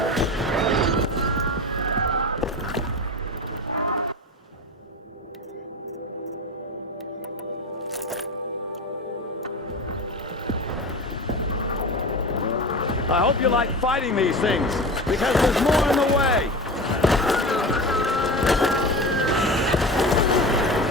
I hope you like fighting these things, because there's more in the way.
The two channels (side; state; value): both; normal; correlation 0.29